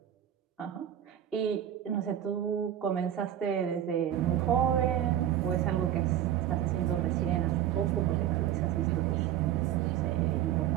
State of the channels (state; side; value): quieter; left; 10.9 dB